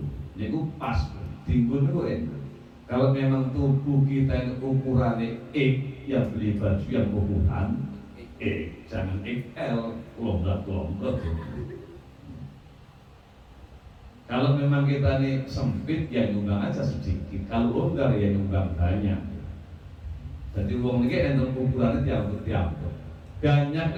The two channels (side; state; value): both; identical; correlation 1.00